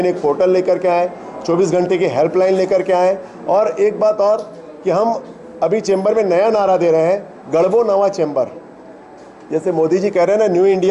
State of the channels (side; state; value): both; identical; correlation 1.00